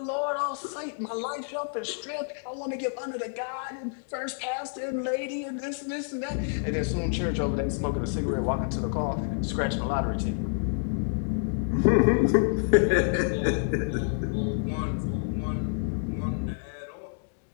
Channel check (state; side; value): silent; right; digital silence